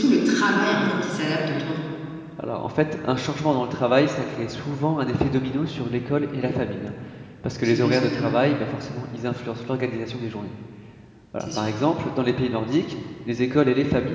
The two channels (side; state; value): both; identical; correlation 1.00